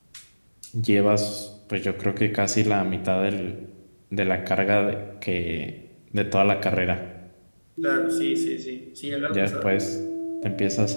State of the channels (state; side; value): inverted; both; correlation -1.00